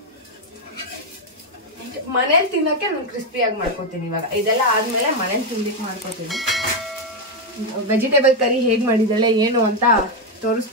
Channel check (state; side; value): normal; both; correlation 0.05